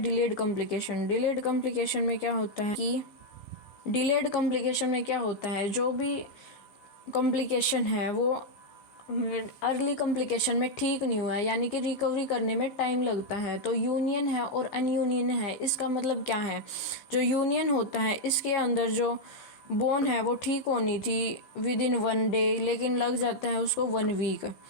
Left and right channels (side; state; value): right; late; 16 ms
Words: कॉम्प्लिकेशन। डिलेड कॉम्प्लिकेशन में क्या होता है कि जो भी कॉम्प्लिकेशन है वो अर्ली कॉम्प्लिकेशन में ठीक नहीं हुआ है यानी कि रिकवरी करने में टाइम लगता है। तो यूनियन है और अनयूनियन है, इसका मतलब क्या है, जो यूनियन होता है इसके अंदर जो बोन है वो ठीक होनी थी विद इन 1 डे लेकिन लग जाता है उसको 1 वीक।